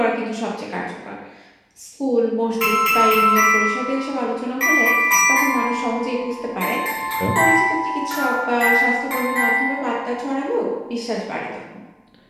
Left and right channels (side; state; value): both; identical; correlation 1.00